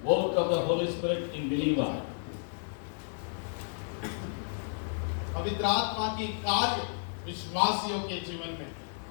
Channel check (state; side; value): silent; right; 56 dB below the other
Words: Work of the Holy Spirit in believer. पवित्र आत्मा की कार्य विश्वासियों के जीवन में।